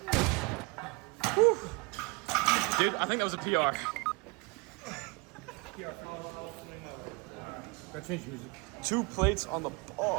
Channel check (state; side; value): quieter; left; 28.0 dB